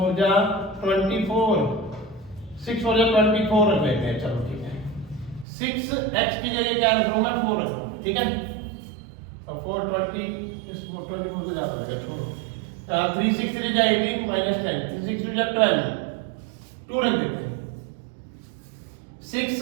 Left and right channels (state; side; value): drops out; left; at 5.5 s